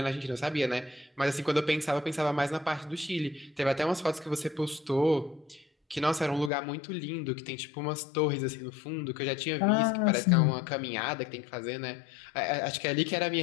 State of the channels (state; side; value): drops out; right; at 6.5 s